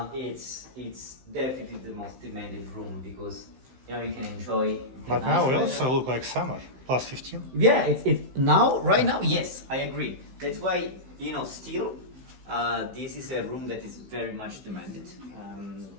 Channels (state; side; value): late; left; 15 ms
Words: it's definitely the most demanded room because you can enjoy. But nice now we weather. also look like summer, plus 15. Yeah, it's now right now. Yes, I agree. That's why still, this is a room that is very much demanded.